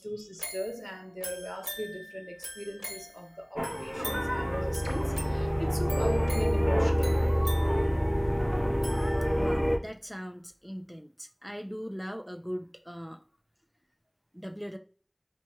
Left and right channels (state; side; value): identical; both; correlation 1.00